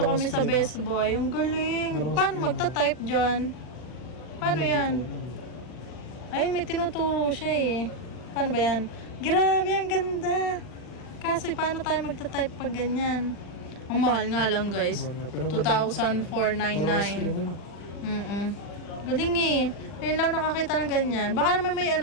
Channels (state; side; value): late; right; 40 ms